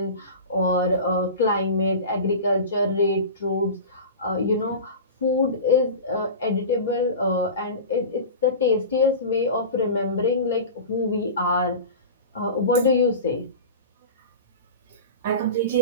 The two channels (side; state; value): both; inverted; correlation -0.31